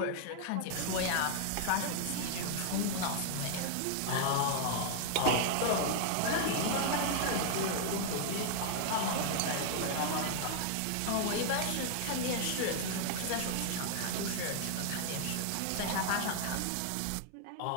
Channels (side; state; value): both; different; correlation 0.00